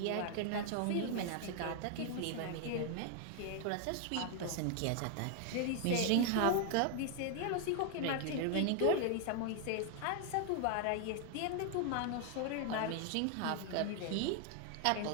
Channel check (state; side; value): different; both; correlation 0.00